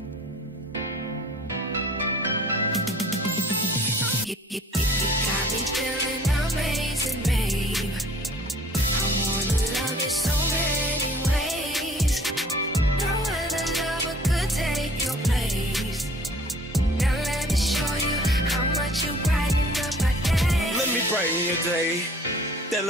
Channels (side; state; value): both; normal; correlation 0.53